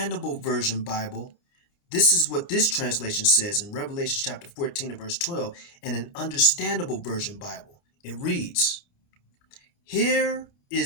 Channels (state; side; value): late; right; 29 ms